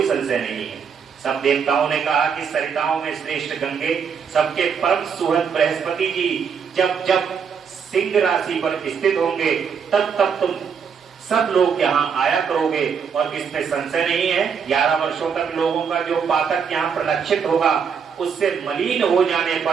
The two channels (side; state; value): left; quieter; 6.7 dB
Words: संशय नहीं है। सब देवताओं ने कहा कि सरिताओं में श्रेष्ठ गंगे, सबके परम सुहृद बृहस्पति जी जब जब सिंह राशि पर स्थित होंगे तब तब तुम सब लोग यहाँ आया करोगे। और इसमें संशय नहीं है, 11 वर्षों तक लोगों का जो पातक यहाँ प्रलक्षित होगा उससे मलिन हो जाने